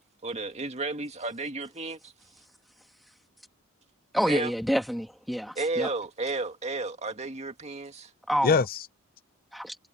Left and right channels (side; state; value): both; normal; correlation 0.51